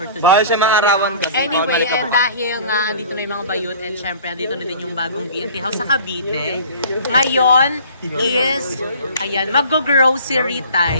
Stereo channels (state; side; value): inverted; both; correlation -0.46